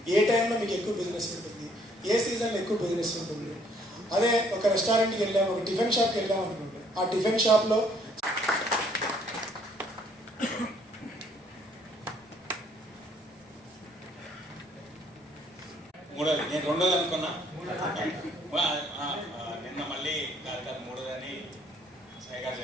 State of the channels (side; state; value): both; normal; correlation 0.64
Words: ఏ టైంలో మీకు ఎక్కువ బిజినెస్ ఉంటుంది, ఏ సీజన్లో ఎక్కువ బిజినెస్ ఉంటుంది. అదే ఒక రెస్టారెంట్కి వెళ్ళాము, ఒక టిఫిన్ షాప్కి వెళ్ళాము అనుకోండి, ఆ టిఫిన్ షాప్లో మూడోది నేను రెండోది అనుకున్నా, నిన్న మళ్ళీ కాదు మూడోదని సాయి గారు